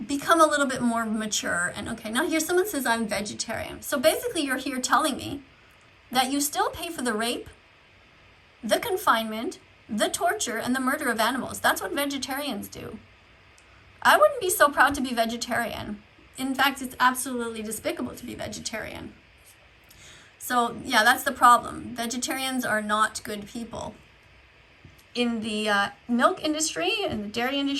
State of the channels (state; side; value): identical; both; correlation 1.00